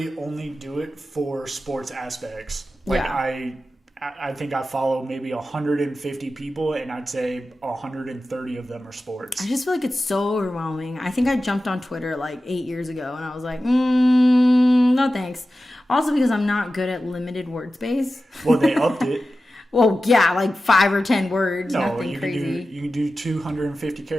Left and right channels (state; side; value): normal; both; correlation 0.94